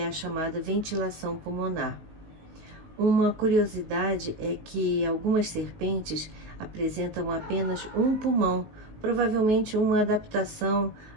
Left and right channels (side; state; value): left; late; 19 ms